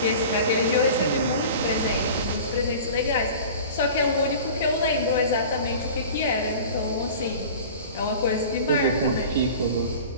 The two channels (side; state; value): both; inverted; correlation -0.39